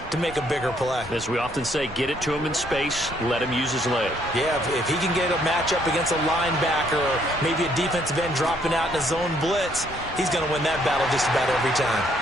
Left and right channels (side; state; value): both; normal; correlation 0.68